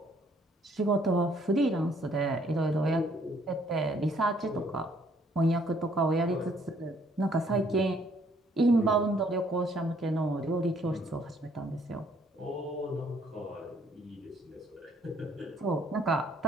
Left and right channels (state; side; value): normal; both; correlation 0.64